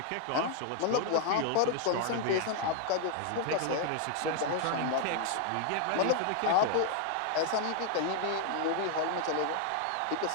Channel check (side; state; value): both; different; correlation 0.00